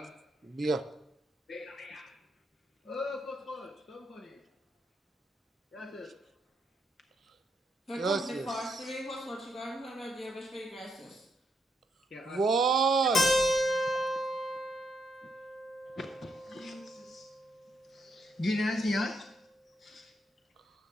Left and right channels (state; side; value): normal; both; correlation 0.79